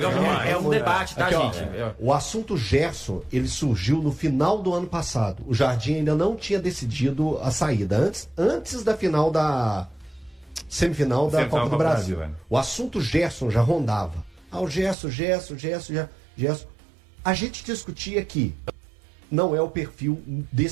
demais. é um debate, tá, Aqui, ó, gente? o assunto Gerson, ele surgiu no final do ano passado. O Jardim ainda não tinha decidido a saída. Antes da final da semifinal da Copa do Brasil. O assunto Gerson já rondava. O Gerson. A gente discutia que não é o perfil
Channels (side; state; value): left; drops out; at 15.0 s